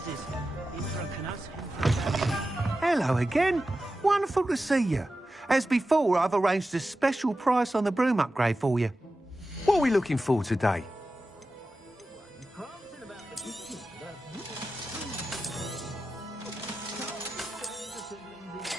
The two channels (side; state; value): both; normal; correlation 0.93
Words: is Hello again. Wonderful to see you. As before, I've arranged a special price on the broom upgrade for you. What are we looking for today?